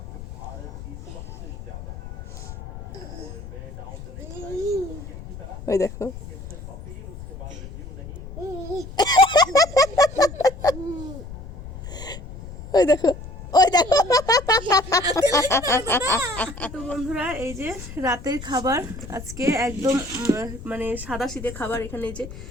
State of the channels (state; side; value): noise; left; rumble, 12 dB below the sound